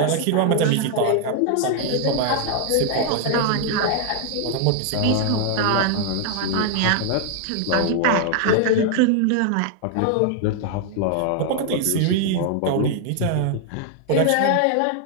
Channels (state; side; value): different; both; correlation 0.00